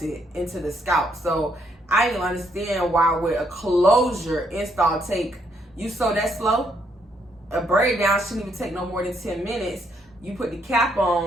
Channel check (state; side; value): normal; both; correlation 0.73